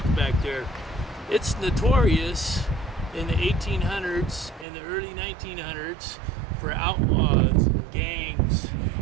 back there. It's notorious in the 1800s and the early 1900s for outlaws and gangs.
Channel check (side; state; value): left; drops out; at 4.7 s